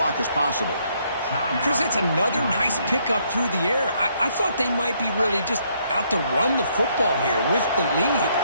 as possible. Chris, it's another nice pickup through the air. I thought they might be really just out to run the football here with the lead.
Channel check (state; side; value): inverted; both; correlation -0.71